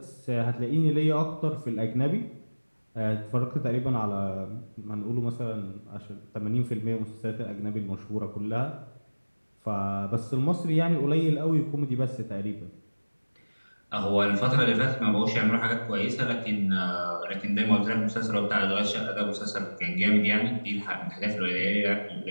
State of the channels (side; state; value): both; inverted; correlation -1.00